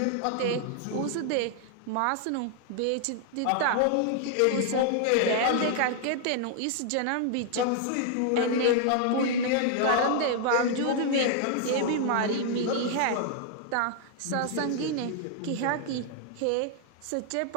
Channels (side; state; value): both; different; correlation 0.00